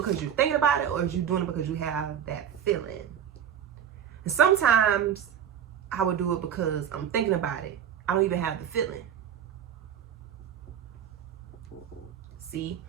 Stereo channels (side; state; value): left; quieter; 9.0 dB